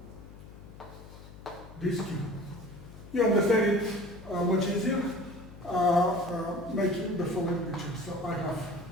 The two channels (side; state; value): left; noise; hum, 17 dB below the sound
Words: this Q. You understand it much easier making the following picture. So I have